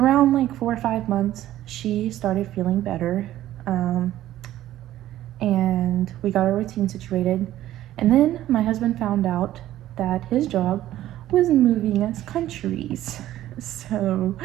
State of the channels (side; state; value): left; quieter; 13.6 dB